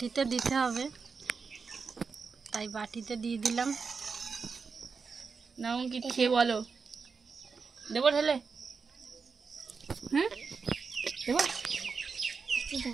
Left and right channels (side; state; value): left; quieter; 5.1 dB